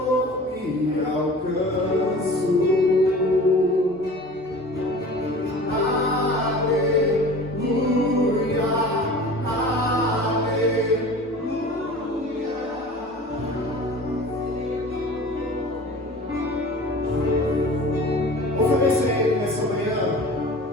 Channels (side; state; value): both; normal; correlation 0.40